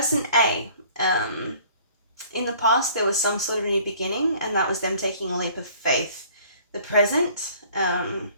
A, in the past there was some sort of new beginning, and that was them taking a leap of faith. The present,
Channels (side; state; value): both; inverted; correlation -0.53